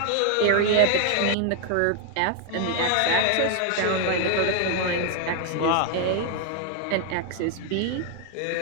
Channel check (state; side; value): different; both; correlation 0.00